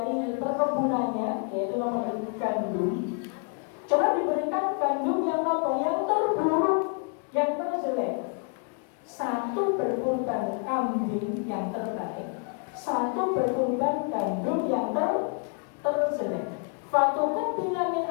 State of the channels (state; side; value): quieter; right; 39.1 dB